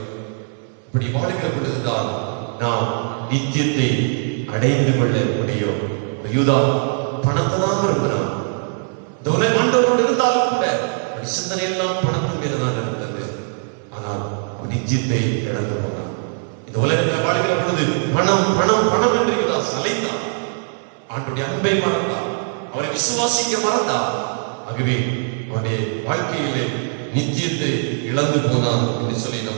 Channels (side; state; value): left; silent; 58 dB below the other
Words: இப்படி வாழ்கிற பொழுதுதான் நாம் நித்தியத்தை அடைந்து கொள்ள முடியும். யூதா பணத்தை தான் விரும்பினான். இந்த உலக ஆண்டவரோடு இருந்தாலும் கூட சிந்தனை எல்லாம் பணத்தின் மேலதான் இருந்தது. ஆனால் நித்தியத்தை இழந்து போனான். இந்த உலகத்தில் வாழ்கிற பொழுது பணம் பணம் பணம் என்று யூதா அலைந்தான். ஆண்டவருடைய அன்பை மறந்தான், அவரை விசுவாசிக்க மறந்தான். ஆகவே அவனுடைய வாழ்க்கையிலே நித்தியத்தை இழந்து போனான் என்று சொல்லி